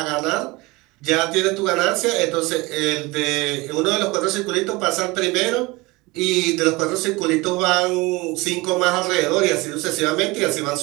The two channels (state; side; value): quieter; left; 23.1 dB